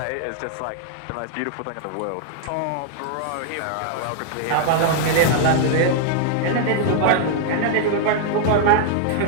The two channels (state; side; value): different; both; correlation -0.01